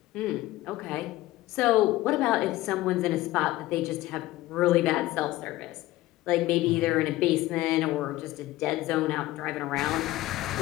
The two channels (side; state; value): right; quieter; 16.8 dB